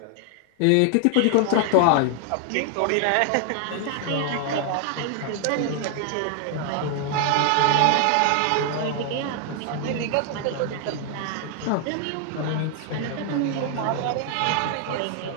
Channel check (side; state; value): both; different; correlation 0.00